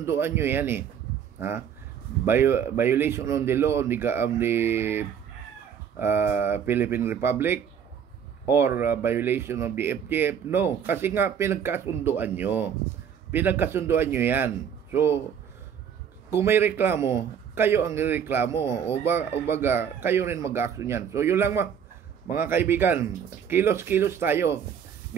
nyo yan violation on the law of the Philippine Republic or violation of the FGF. No, kasi nga pinagkasunduan nyo yan. So kung may reklamo, kayo ang reklamo o baga kayo rin mag-action yan. So yun lang mga kaibigan, kilos-kilos tayo.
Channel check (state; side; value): quieter; left; 8.0 dB